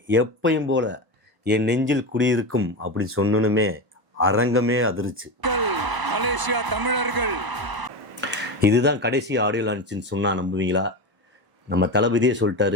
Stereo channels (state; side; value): late; left; 1.0 ms